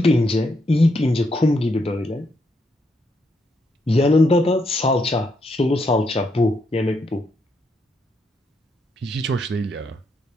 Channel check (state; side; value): normal; both; correlation 0.78